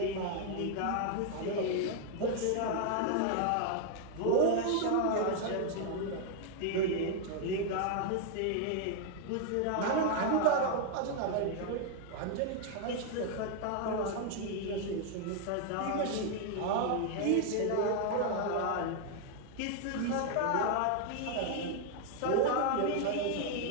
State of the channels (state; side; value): different; both; correlation 0.00